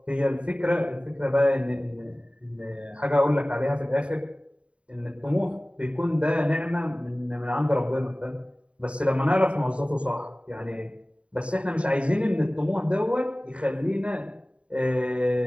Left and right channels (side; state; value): left; late; 0.061 ms